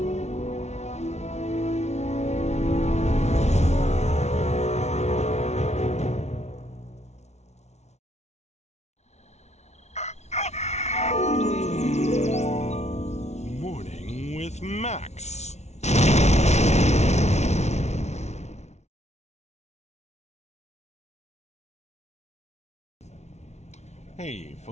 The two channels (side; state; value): right; late; 0.32 ms